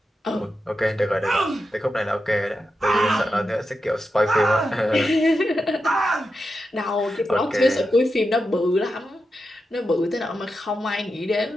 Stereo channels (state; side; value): normal; both; correlation 0.88